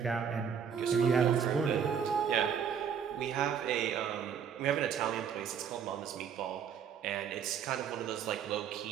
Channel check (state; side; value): quieter; left; 7.6 dB